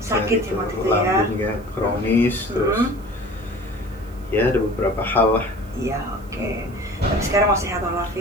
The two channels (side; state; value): right; noise; hiss, 28 dB below the sound